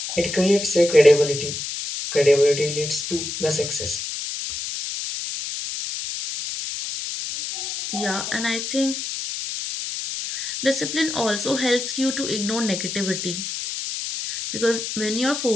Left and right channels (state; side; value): noise; left; hiss, 5 dB below the sound